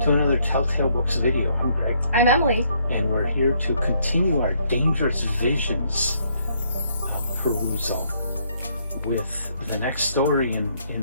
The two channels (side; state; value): both; inverted; correlation -0.70